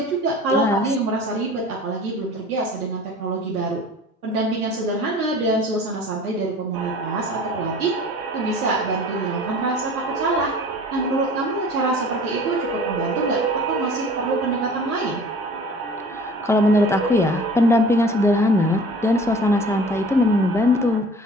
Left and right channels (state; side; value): normal; both; correlation 0.44